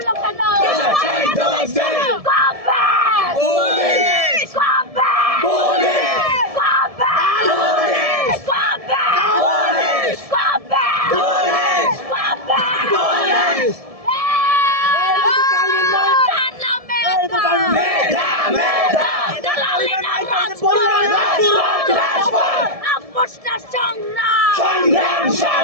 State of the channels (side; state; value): left; late; 1.7 ms